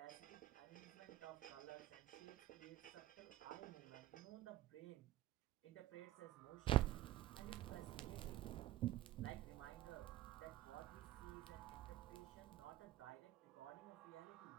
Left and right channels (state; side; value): quieter; left; 14.3 dB